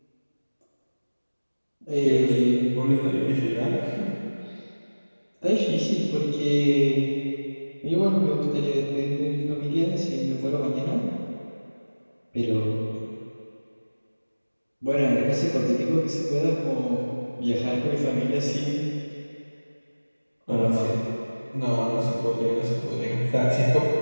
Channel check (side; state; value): both; inverted; correlation -1.00